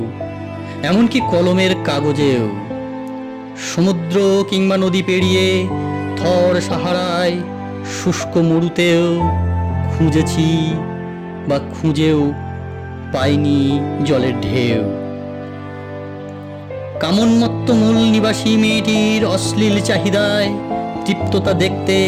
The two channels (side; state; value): both; identical; correlation 1.00